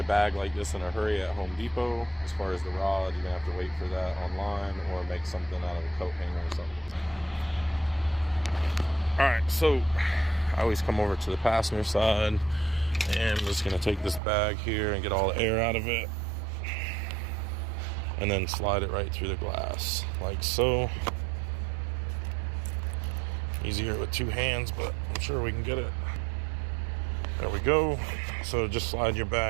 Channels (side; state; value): left; drops out; at 14.2 s